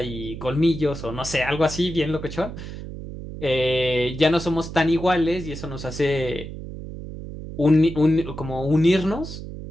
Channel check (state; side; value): noise; right; hum, 10 dB below the sound